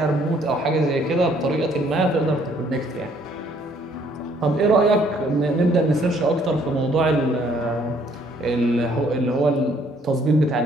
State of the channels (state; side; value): normal; both; correlation 0.64